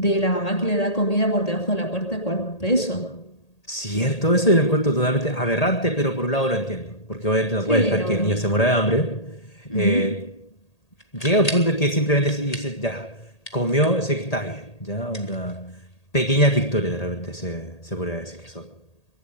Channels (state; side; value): late; right; 1.8 ms